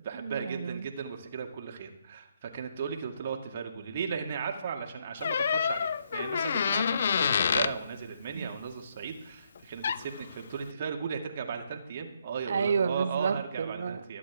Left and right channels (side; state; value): both; inverted; correlation -0.73